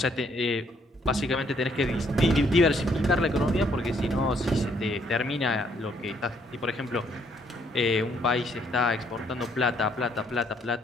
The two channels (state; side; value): normal; both; correlation 0.68